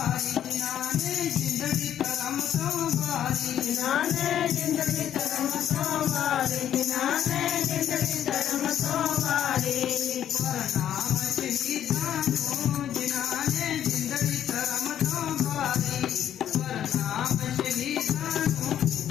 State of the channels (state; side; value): quieter; right; 10.4 dB